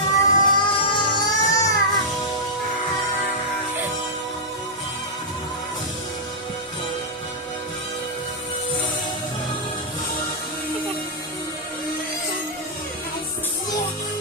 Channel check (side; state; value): both; normal; correlation -0.09